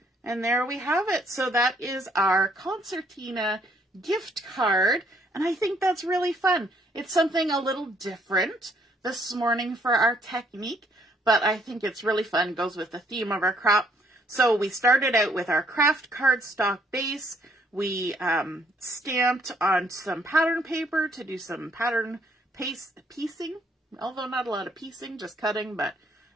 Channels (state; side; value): normal; both; correlation 0.67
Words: And there we have it. So that is our Concertina gift card. And I think that's really fun. It's something a little different this morning for our technique, but I think it's really fun. It goes with the theme of our crop. So we started out with our Kraft Cardstock base. We stamped on some pattern paper to do some pattern piecing, although not a lot of piecing, just cutting, but